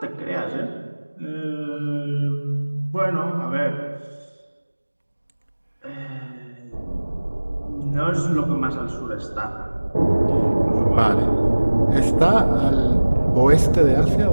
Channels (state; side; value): inverted; both; correlation -1.00